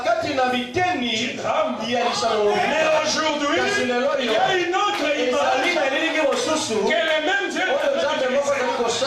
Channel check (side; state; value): both; identical; correlation 1.00